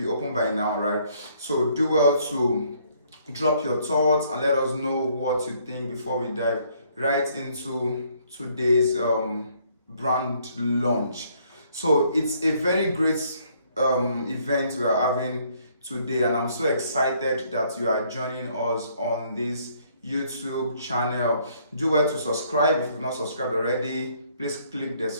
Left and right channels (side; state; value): both; inverted; correlation -0.66